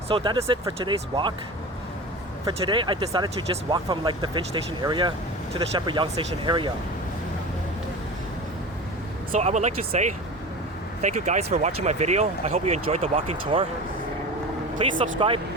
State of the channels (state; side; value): normal; both; correlation 0.32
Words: So that is it for today's walk. For today, I decided to just walk from like the Finch Station area to the Sheppard Yonge Station area. So I would like to say thank you guys for watching my video. I hope you enjoyed the walking tour. Please subscribe